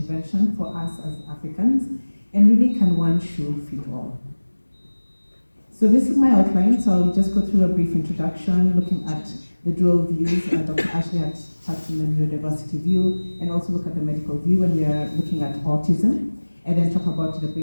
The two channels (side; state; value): both; inverted; correlation -1.00